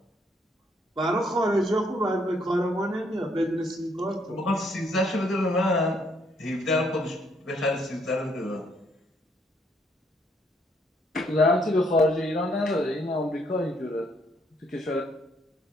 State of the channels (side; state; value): both; normal; correlation 0.69